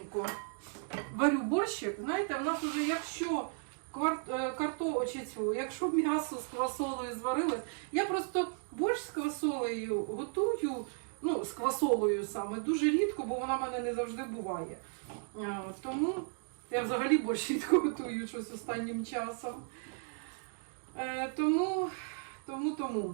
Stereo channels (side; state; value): left; silent; 54 dB below the other